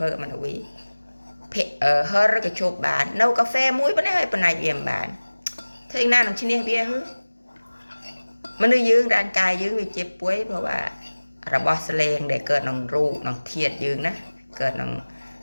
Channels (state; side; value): inverted; both; correlation -1.00